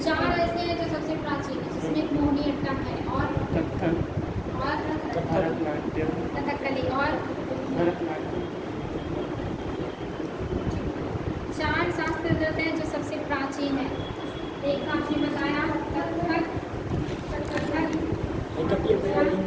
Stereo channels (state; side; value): identical; both; correlation 1.00